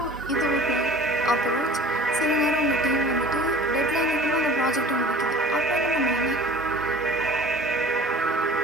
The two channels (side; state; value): both; normal; correlation 0.43